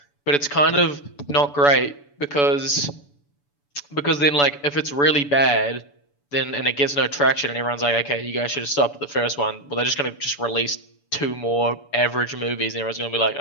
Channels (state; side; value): late; right; 7.0 ms